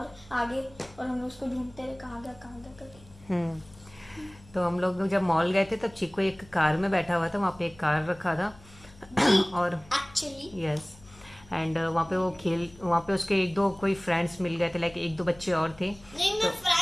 आगे, और हम लोग उसको ढूंढते रहे कहाँ गया करके। तो हम लोग जब मॉल गए थे तब चीकू एक कार में बैठा हुआ था, वहाँ पे एक कार रखा था और एक्चुअली यस एंड वहाँ पे वहाँ पे उसके एक दो कोई फ्रेंड्स मिल गए थे, लाइक एक दो बच्चे और थे। नहीं, मैं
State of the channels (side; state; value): left; noise; hum, 23 dB below the sound